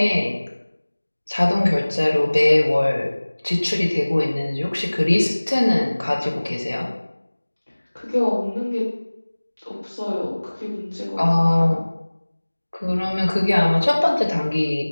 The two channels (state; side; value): inverted; both; correlation -1.00